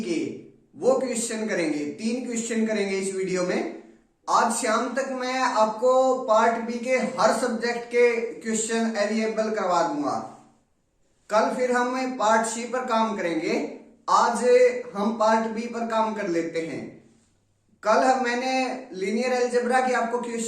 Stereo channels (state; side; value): identical; both; correlation 1.00